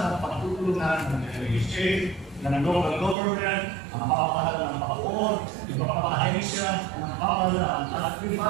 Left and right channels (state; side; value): drops out; left; at 3.2 s